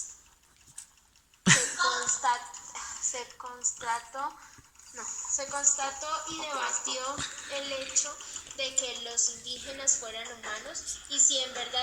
y debatió el hecho de que los indígenas fueran humanos y si en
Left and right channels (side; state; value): both; identical; correlation 1.00